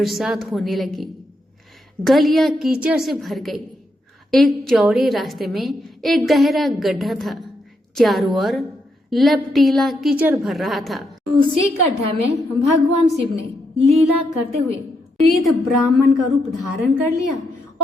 होने लगी। गलियां कीचड़ से भर गई। एक चौड़े रास्ते में एक गहरा गड्ढा था। चारों ओर लपटीला कीचड़ भर रहा था। उसी गड्ढा में भगवान शिव ने लीला करते हुए वृद्ध ब्राह्मण का रूप धारण कर लिया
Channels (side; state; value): both; normal; correlation 0.80